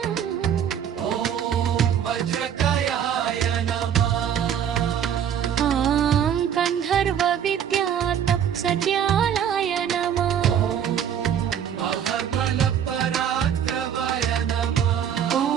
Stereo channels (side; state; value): left; quieter; 8.9 dB